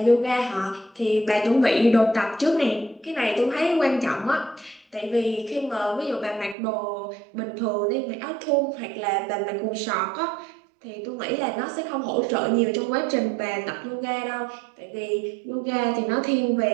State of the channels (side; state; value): left; drops out; at 6.6 s